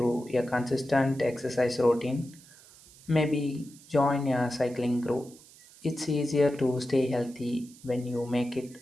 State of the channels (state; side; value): noise; right; hiss, 23 dB below the sound